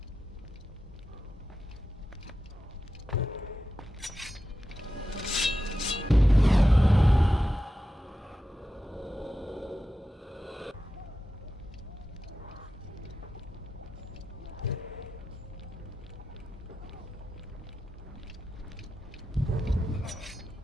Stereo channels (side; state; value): both; normal; correlation 0.91